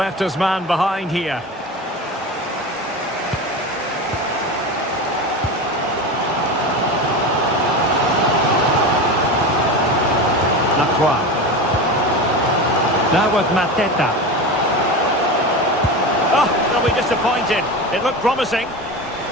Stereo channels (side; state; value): both; normal; correlation 0.25